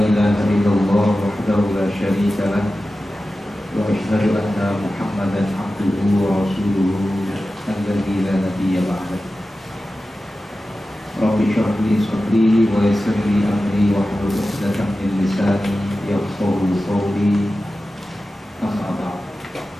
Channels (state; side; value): normal; both; correlation 0.94